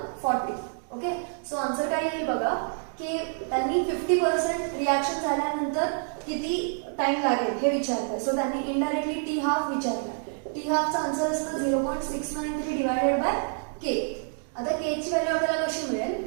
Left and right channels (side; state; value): left; silent; 60 dB below the other